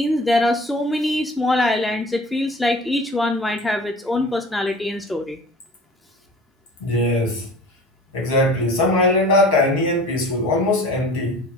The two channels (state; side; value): normal; both; correlation 0.42